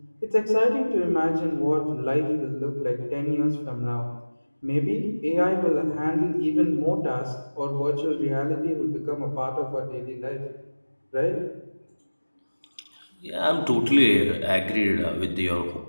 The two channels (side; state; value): both; inverted; correlation -1.00